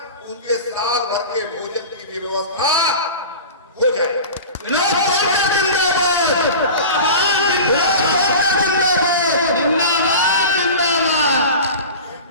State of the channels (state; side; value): inverted; both; correlation -0.33